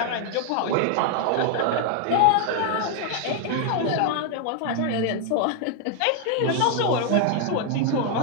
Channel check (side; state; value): both; different; correlation 0.00